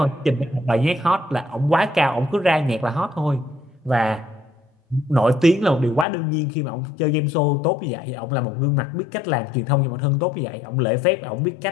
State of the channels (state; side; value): drops out; right; at 6.1 s